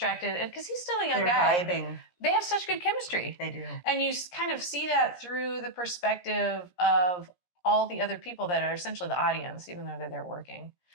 because he's still a young guy. They're vibing. They have such good chemistry. They do. And you kind of see that through the perspective of all the other people that are essentially the audience, even though they're there working.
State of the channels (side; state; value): right; late; 17 ms